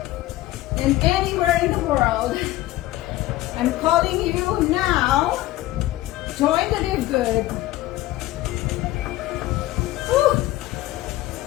and anywhere in the world. I'm calling you now. Join the Live Good. Whew.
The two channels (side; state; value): right; quieter; 16.4 dB